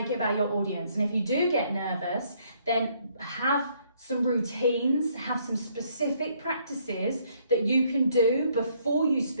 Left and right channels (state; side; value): inverted; both; correlation -0.67